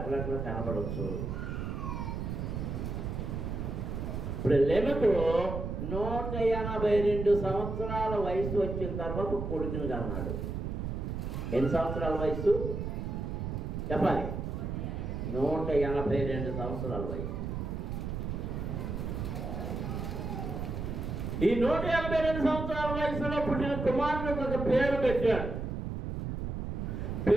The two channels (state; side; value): noise; right; rumble, 3 dB below the sound